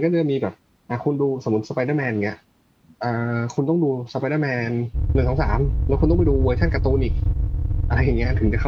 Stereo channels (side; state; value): both; identical; correlation 1.00